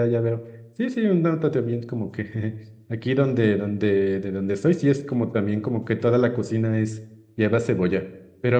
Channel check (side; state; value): both; identical; correlation 1.00